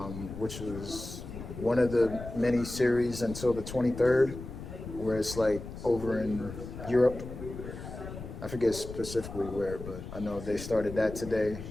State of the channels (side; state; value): left; noise; rumble, 10 dB below the sound